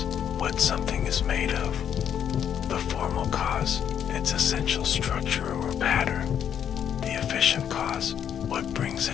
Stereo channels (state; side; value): quieter; right; 9.0 dB